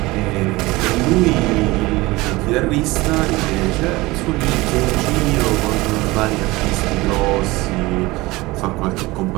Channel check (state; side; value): quieter; left; 21.0 dB